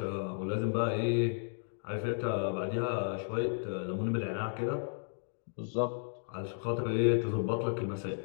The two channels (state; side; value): silent; right; digital silence